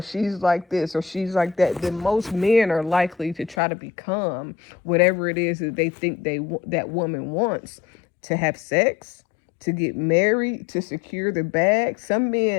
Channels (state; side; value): drops out; right; at 3.6 s